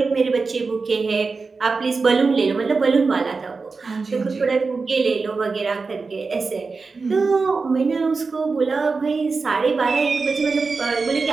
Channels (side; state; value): left; quieter; 4.4 dB